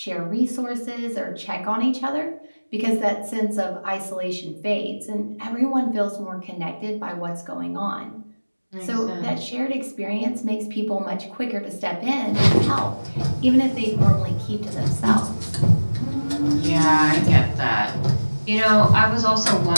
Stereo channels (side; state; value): both; inverted; correlation -1.00